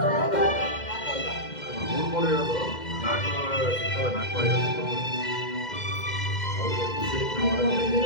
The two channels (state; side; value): late; right; 2.1 ms